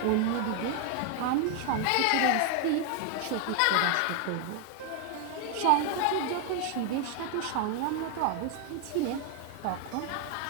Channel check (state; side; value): different; both; correlation 0.01